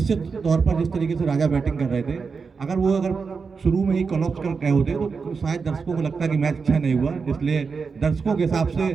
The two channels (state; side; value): quieter; left; 5.1 dB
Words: तौर पर जिस तरीके से राजा बैटिंग कर रहे थे, अगर शुरू में ही कॉलअप्स कर गए होते तो शायद दर्शकों को लगता कि मैच अच्छा नहीं हुआ। इसलिए दर्शकों के हिसाब से